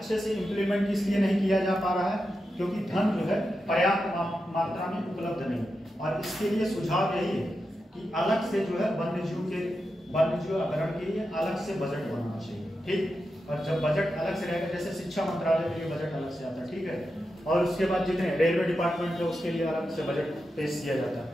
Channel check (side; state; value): both; normal; correlation 0.89